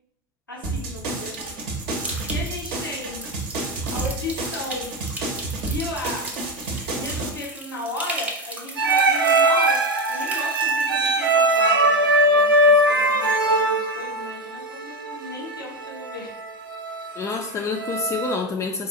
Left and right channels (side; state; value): both; normal; correlation 0.14